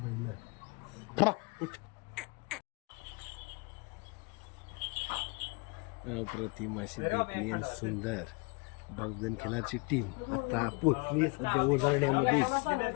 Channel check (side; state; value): right; quieter; 30.4 dB